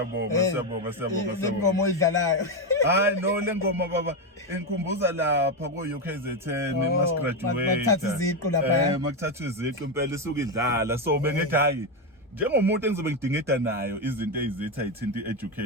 Ingoma oyidlalayo. Hayi no lengoma baba engikhumbuza lapha ko UKZN mas graduate. Makuthatha iziqu lapha. Makuthatha iziqu impela isuke idlala so bengithi hayi njengomuntu engizobe ngidingida nayo izinto ezitha ayithinta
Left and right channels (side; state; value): both; normal; correlation 0.09